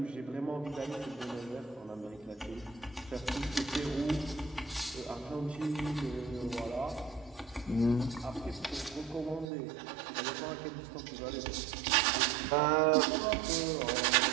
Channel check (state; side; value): drops out; left; at 9.5 s